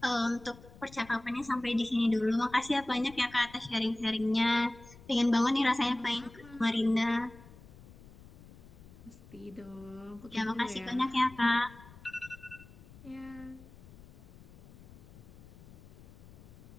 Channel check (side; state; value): left; noise; rumble, 20 dB below the sound